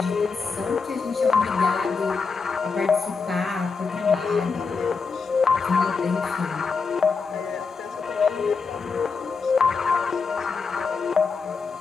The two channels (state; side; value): quieter; right; 4.9 dB